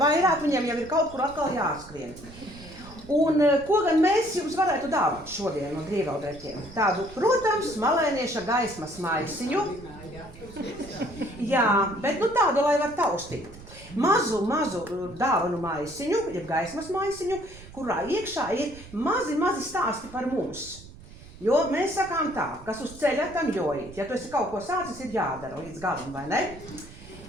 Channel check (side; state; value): right; noise; rumble, 18 dB below the sound